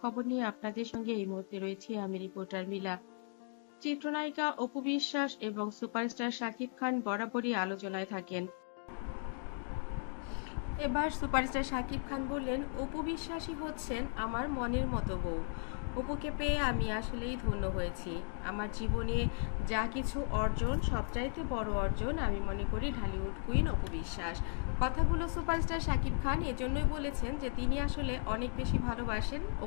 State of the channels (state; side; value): silent; right; 54 dB below the other